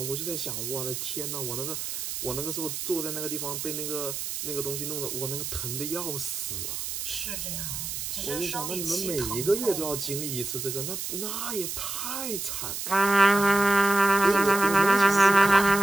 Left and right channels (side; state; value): right; noise; hiss, 5 dB below the sound